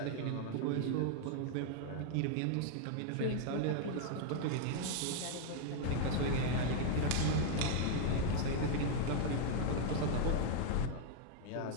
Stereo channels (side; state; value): both; different; correlation 0.00